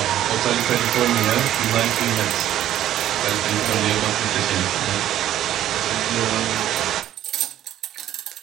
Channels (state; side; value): quieter; left; 12.2 dB